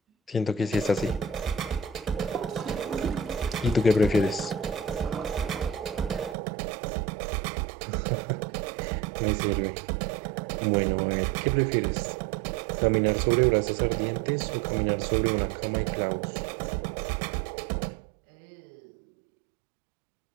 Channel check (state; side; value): drops out; left; at 6.4 s